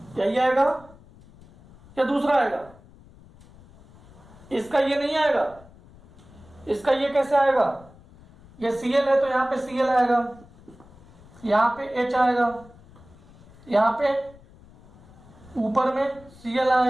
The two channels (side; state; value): left; noise; rumble, 24 dB below the sound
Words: यही आएगा या दूसरा आएगा, इसका ये नहीं आएगा, इसका ये कैसे आएगा, ये Cl है तो यहां पे Cl आएगा, यहां पे H आएगा, यहां पे ऊपर में Cl